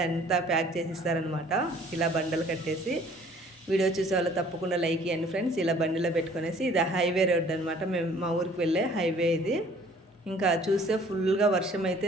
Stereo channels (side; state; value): both; normal; correlation 0.54